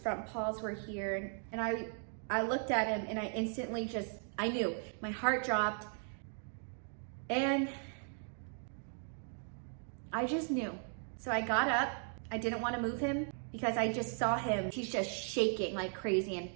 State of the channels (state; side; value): silent; left; 53 dB below the other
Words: paws were here. And I looked at him and I instantly I knew. My heart dropped. And I just knew. So I got up. I didn't want to move him because I just saw him. He's just shaking like crazy and